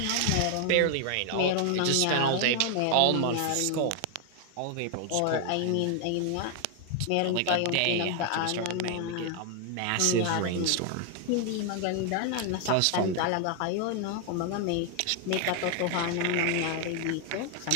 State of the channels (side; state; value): both; different; correlation 0.00